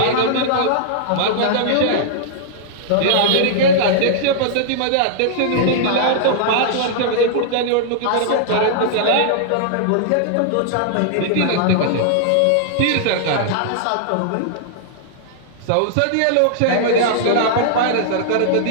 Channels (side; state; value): both; different; correlation -0.01